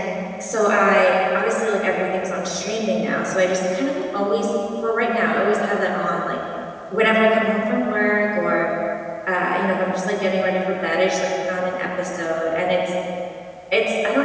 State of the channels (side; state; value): both; identical; correlation 1.00